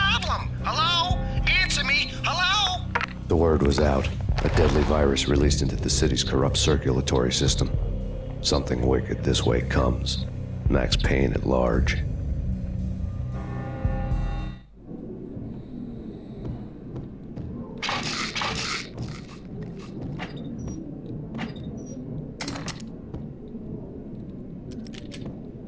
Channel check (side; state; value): both; identical; correlation 1.00